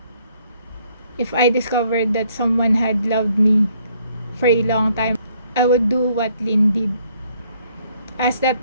if I discovered that someone had loved me for a long time, I would do what Lynn did. Ask that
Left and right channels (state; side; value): inverted; both; correlation -0.67